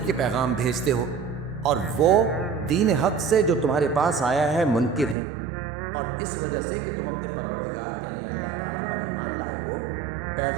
کے پیغام بھیجتے ہو اور وہ دین حق سے جو تمہارے پاس آیا ہے منکر ہیں، اور اس وجہ سے کہ تم اپنے پروردگار یعنی اللہ تعالیٰ پر ایمان لائے ہو،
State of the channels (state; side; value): drops out; left; at 5.2 s